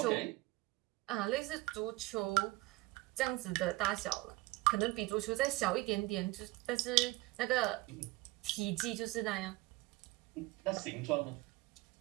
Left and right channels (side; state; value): left; quieter; 21.0 dB